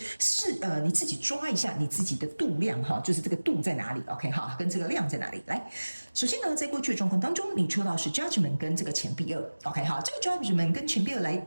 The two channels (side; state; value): both; inverted; correlation -1.00